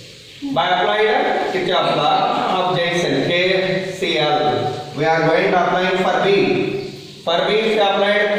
By applying Kirchhoff's law of Janssen, KCL. We are going to apply for B. For B, if you applied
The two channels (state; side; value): identical; both; correlation 1.00